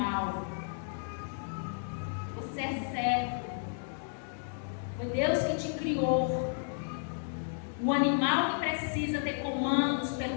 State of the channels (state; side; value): silent; right; digital silence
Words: Você é servo. Foi Deus que te criou. O animal que precisa ter comandos